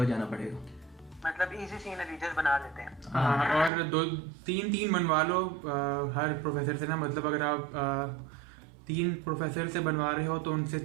जाना पड़ेगा। मतलब इजी सीन रीजन बना देते हैं। हाँ, और 2-3 बनवा लो हर प्रोफेसर से ना। मतलब अगर आप 3 प्रोफेसर से बनवा रहे हो तो उनसे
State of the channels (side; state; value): left; drops out; at 3.7 s